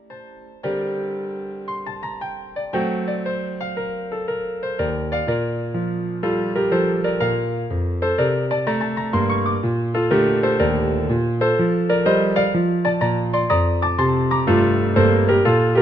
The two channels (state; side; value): normal; both; correlation 0.81